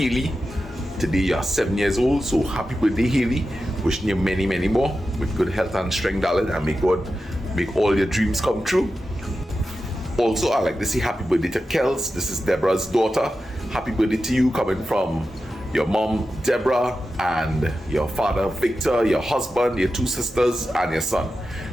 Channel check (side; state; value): both; normal; correlation 0.92